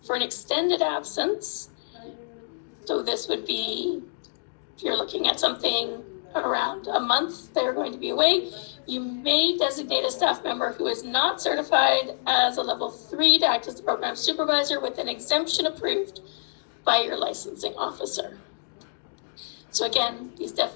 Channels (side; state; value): right; silent; digital silence